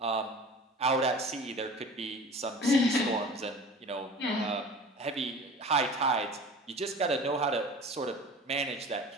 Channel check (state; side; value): normal; both; correlation 0.40